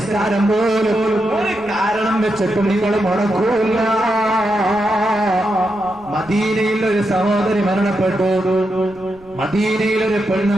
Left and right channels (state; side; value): noise; right; rumble, 26 dB below the sound